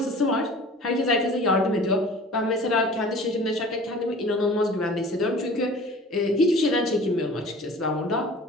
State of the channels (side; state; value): both; normal; correlation 0.44